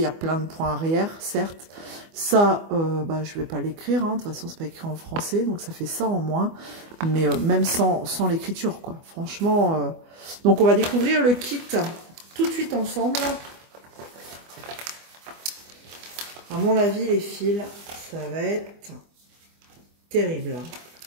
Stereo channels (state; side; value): late; left; 24 ms